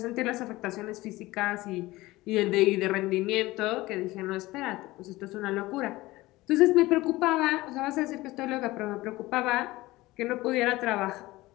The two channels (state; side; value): quieter; right; 19.1 dB